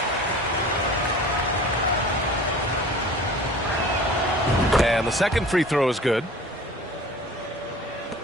And the second free throw is good.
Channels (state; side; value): normal; both; correlation 0.42